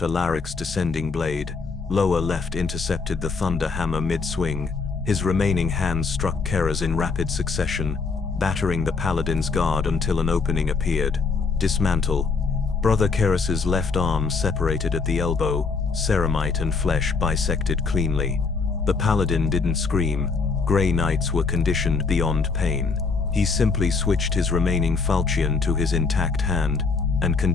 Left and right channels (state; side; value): quieter; right; 4.6 dB